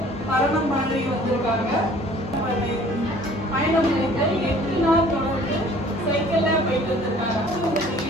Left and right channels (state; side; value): normal; both; correlation 0.52